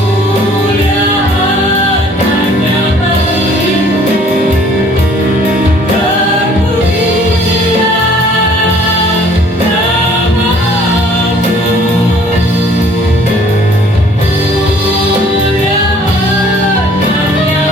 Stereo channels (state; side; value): normal; both; correlation 0.56